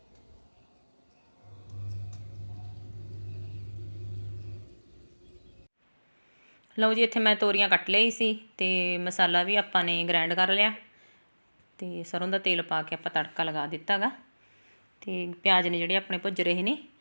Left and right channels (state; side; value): inverted; both; correlation -1.00